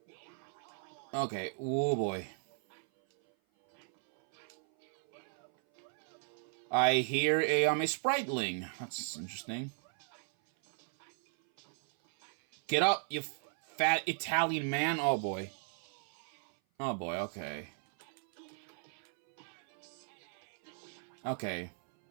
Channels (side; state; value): left; silent; 54 dB below the other